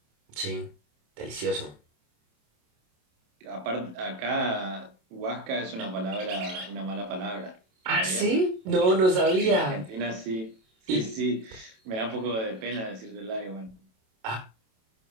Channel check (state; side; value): late; left; 27 ms